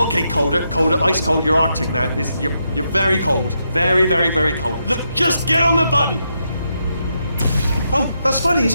colder, ice cold. You're Arctic now. You're very cold, very, very, very cold. Look, just get on the button. Oh, that's funny, is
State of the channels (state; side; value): inverted; both; correlation -0.82